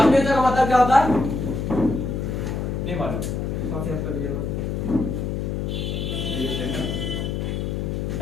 का मतलब क्या होता है नहीं मालूम?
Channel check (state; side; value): noise; left; hum, 2 dB below the sound